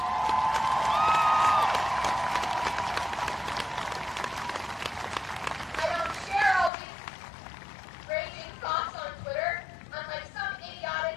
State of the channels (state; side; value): drops out; right; at 6.7 s